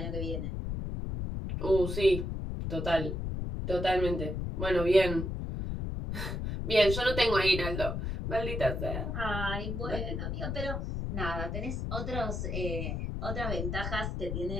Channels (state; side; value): noise; left; rumble, 3 dB below the sound